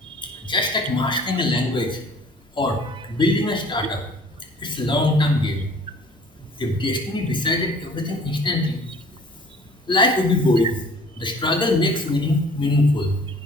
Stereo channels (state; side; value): normal; both; correlation 0.51